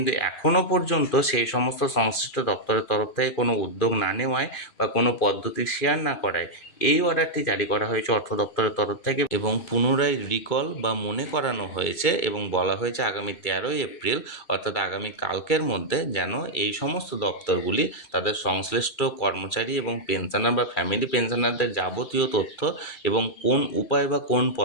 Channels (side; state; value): right; late; 2.4 ms